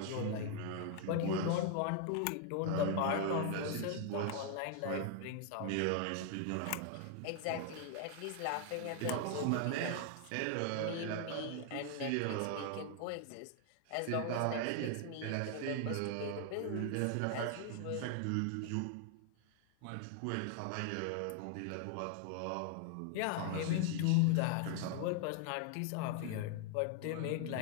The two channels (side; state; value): both; different; correlation 0.00